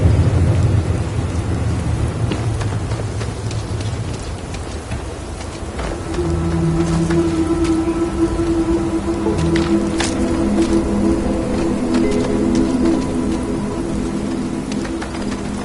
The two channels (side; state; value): both; identical; correlation 1.00